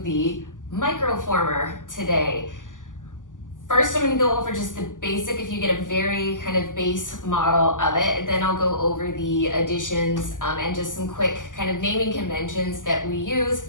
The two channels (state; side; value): late; right; 0.88 ms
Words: the Microformer today. First, I'm gonna go over just the basic, if you get a very kind of base model of it, then I'll go over the additions and just some quick kind of naming conventions that we use